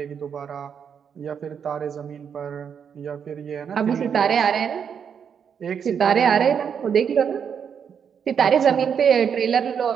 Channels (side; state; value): left; quieter; 7.4 dB